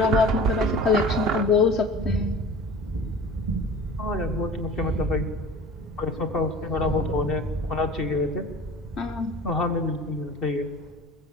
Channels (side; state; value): both; normal; correlation 0.40